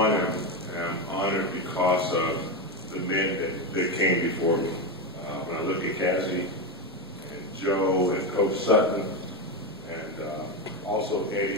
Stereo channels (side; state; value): both; normal; correlation 0.13